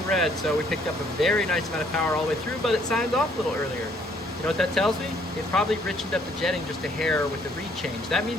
red. So we picked up a very nice amount of power all the way through, but it signed off a little earlier. You know what that tells me? It probably richened up the jetting just a hair with the reed change. That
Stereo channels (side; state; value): both; normal; correlation 0.64